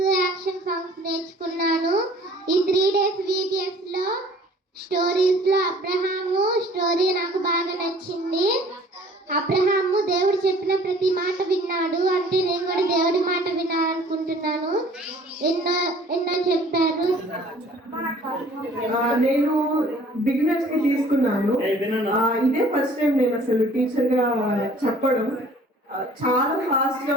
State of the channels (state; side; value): normal; both; correlation 0.53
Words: యాక్షన్ సాంగ్స్ నేర్చుకున్నాను. ఈ 3 days VBSలో స్టోరీస్లో అబ్రహాము స్టోరీ నాకు బాగా నచ్చింది. అబ్రహాము దేవుడు చెప్పిన ప్రతి మాట విన్నాడు. అంటే నేను కూడా దేవుడి మాట వినాలనుకుంటున్నాను. ఎన్నో చెప్పారు. నేను బిగినర్స్ కి తీసుకున్నాను. ఇదే ఫస్ట్ టైం నేను అసలు టీచర్ గా చెప్పడం. చాలా ఫాస్ట్ గా